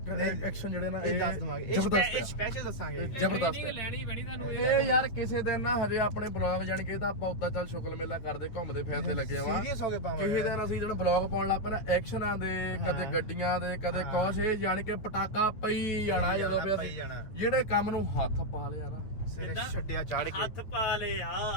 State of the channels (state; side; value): late; right; 9.4 ms